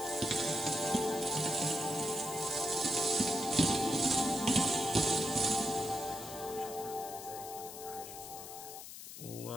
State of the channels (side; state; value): left; noise; hiss, 12 dB below the sound